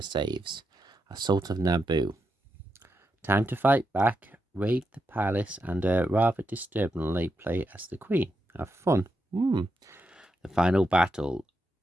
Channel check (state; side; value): normal; both; correlation 0.85